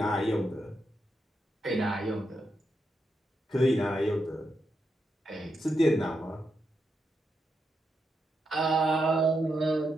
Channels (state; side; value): normal; both; correlation 0.84